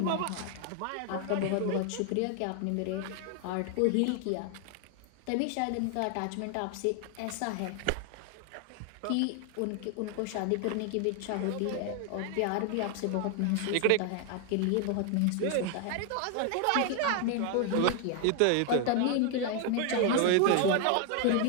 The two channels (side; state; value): both; different; correlation 0.00